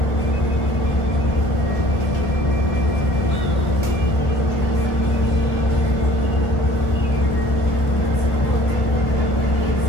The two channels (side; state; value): right; late; 1.8 ms